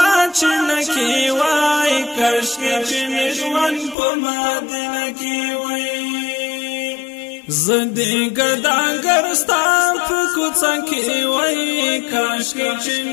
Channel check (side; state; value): right; drops out; at 4.0 s